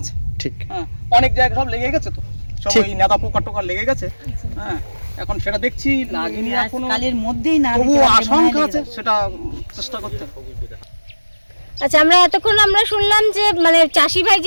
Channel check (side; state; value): both; inverted; correlation -1.00